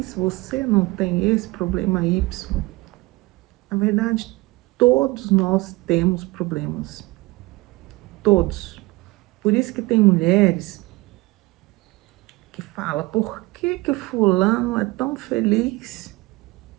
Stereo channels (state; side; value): quieter; left; 22.0 dB